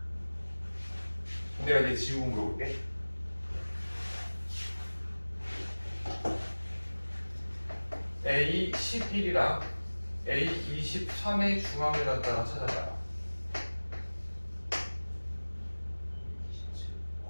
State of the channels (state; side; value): inverted; both; correlation -1.00